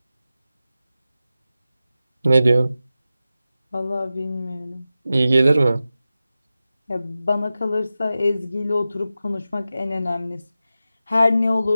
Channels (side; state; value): both; inverted; correlation -0.93